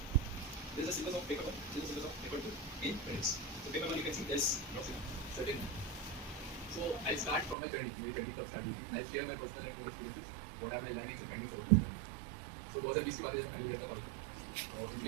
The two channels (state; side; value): drops out; left; at 7.6 s